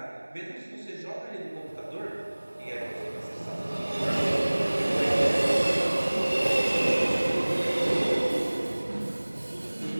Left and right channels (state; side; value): inverted; both; correlation -1.00